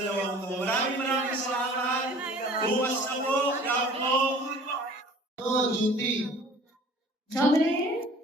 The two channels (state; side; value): normal; both; correlation 0.48